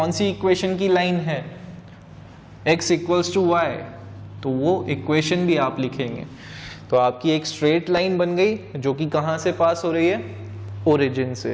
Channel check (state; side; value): identical; both; correlation 1.00